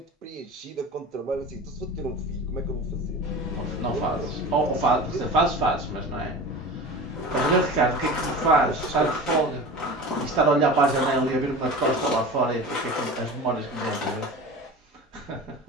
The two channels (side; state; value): both; normal; correlation 0.34